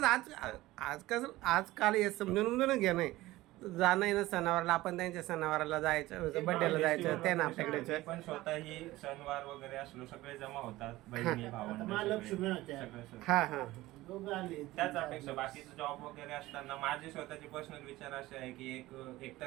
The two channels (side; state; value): left; quieter; 17.7 dB